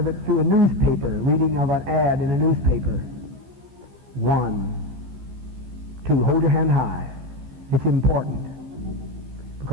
it through a newspaper, reading of an ad in a newspaper? 1, 2. Hold your hand high. It's important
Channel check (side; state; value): left; late; 16 ms